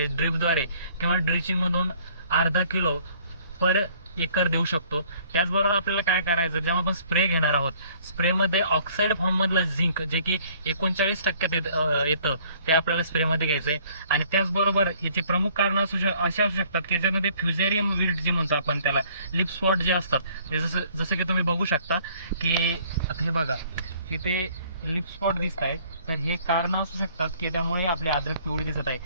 ड्रिपद्वारे किंवा ड्रिचिंगमधून अर्धा किलो पर एकर देऊ शकतो. त्याचबरोबर आपल्याला काय करायचं, जेव्हा आपण स्प्रे घेणार आहोत, स्प्रेमध्ये ऑक्साईड फॉर्ममधलं झिंक जे की 39% येतं, ते आपल्याला स्प्रेमध्ये घ्यायचं आहे. आणि त्याचबरोबर याचे प्रमुख कारण असे असू शकतात की ज्याच्यामध्ये फ्युजेरियम विल्ट जे म्हणतो आपण त्याला, लिप स्पॉट जे असतात, ते जसं जसं की तुम्ही बघू शकता की आता हे बघा, तिथे लिप स्पॉट दिसत आहेत. तर हे कारण असू शकतात की त्यामुळे आपले अद्रक पिवळी दिसत आहे.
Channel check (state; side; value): inverted; both; correlation -0.58